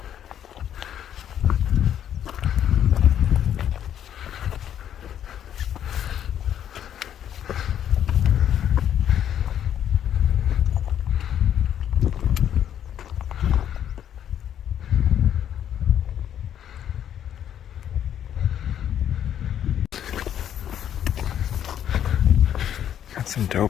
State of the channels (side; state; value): right; quieter; 9.9 dB